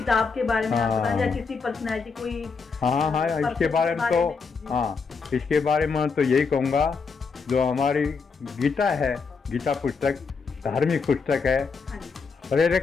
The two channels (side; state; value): right; quieter; 5.0 dB